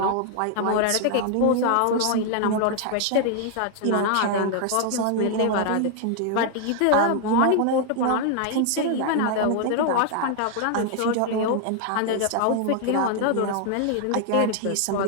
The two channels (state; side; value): different; both; correlation 0.00